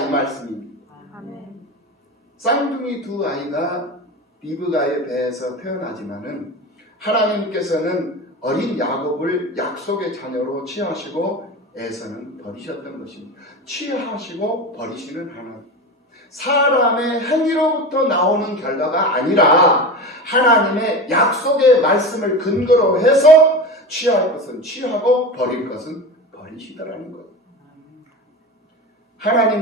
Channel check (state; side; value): normal; both; correlation 0.27